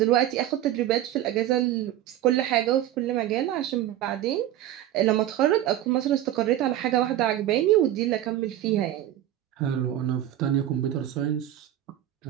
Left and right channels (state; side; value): quieter; left; 12.7 dB